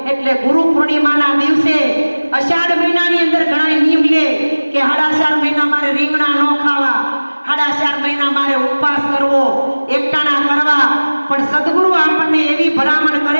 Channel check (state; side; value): inverted; both; correlation -1.00